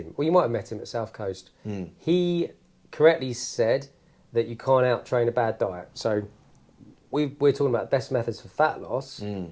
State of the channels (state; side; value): identical; both; correlation 1.00